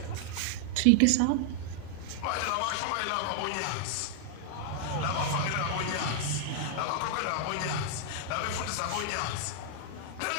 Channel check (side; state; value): both; different; correlation 0.00